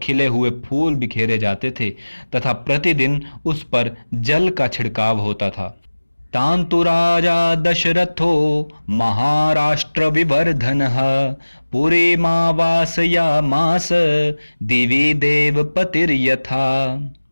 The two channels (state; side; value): inverted; both; correlation -1.00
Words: खिले हुए फूल बिखेरे जाते थे तथा प्रतिदिन उस पर जल का छिड़काव होता था। तान्तु राजा दशरथो महाराष्ट्र विवर्धनः पुरीमावासयामास दिवि देवपतिर्यथा।